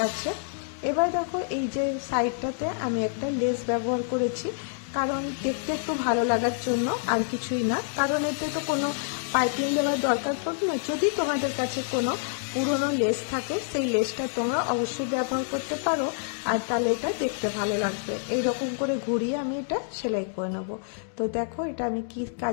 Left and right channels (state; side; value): silent; right; digital silence